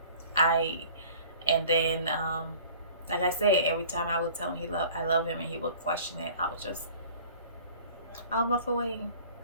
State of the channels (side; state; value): both; inverted; correlation -0.47